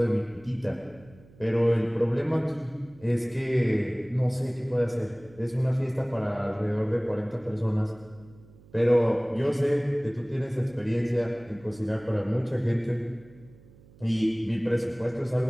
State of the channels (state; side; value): noise; right; hum, 24 dB below the sound